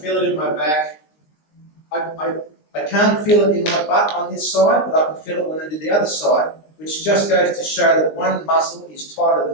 it in my back. I can't feel it in my butt on this side, but I can feel it when I do the other side, which just goes to show that one muscle is tighter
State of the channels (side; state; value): right; late; 19 ms